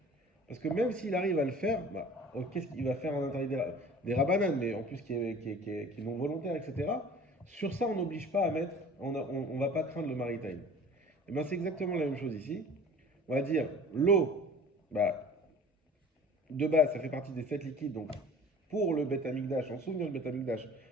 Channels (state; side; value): normal; both; correlation 0.45